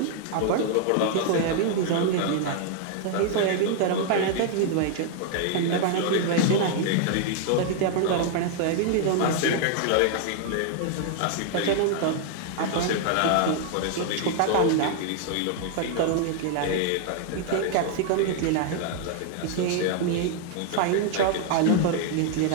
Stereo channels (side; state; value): both; different; correlation 0.00